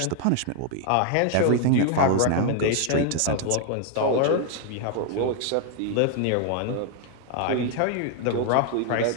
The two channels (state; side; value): different; both; correlation 0.00